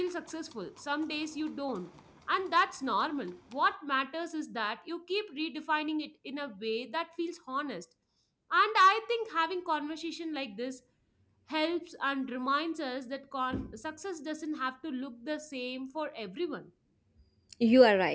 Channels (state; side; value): identical; both; correlation 1.00